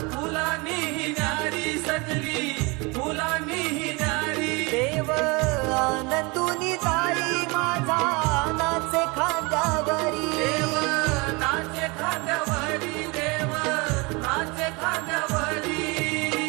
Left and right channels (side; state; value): left; quieter; 27.6 dB